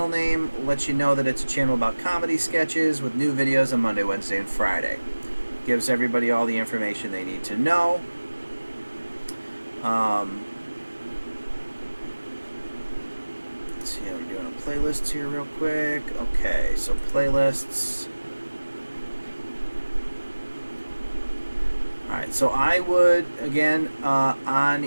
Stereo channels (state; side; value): inverted; both; correlation -1.00